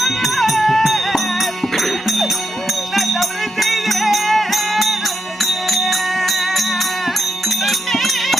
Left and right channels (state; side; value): normal; both; correlation 0.82